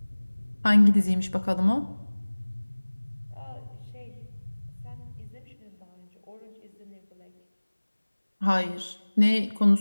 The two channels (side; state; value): both; inverted; correlation -1.00